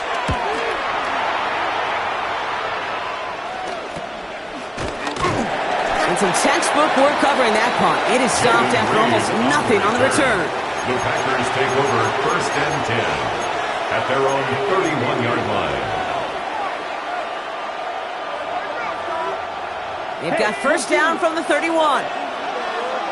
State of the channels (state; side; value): identical; both; correlation 1.00